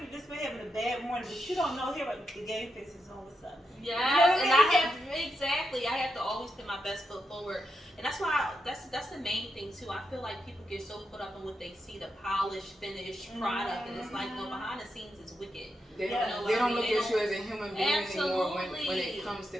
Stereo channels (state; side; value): normal; both; correlation 0.85